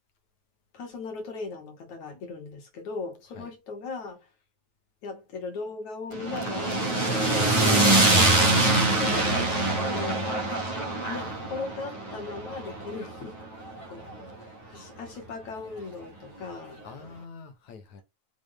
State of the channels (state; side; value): late; right; 9.3 ms